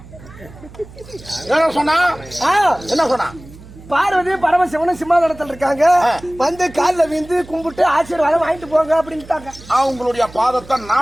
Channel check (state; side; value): noise; right; hum, 19 dB below the sound